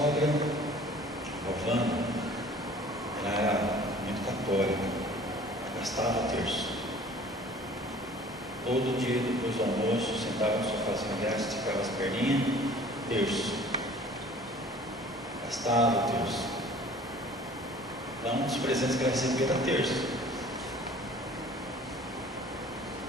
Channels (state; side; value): normal; both; correlation 0.49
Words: Rovana, ela era muito católica, gastava terço. Todo dia depois do almoço, sentava no sofazinho dela, esticava as perninhas, terço. Gastava terço. Então, um dos presentes que ela recebia era terço.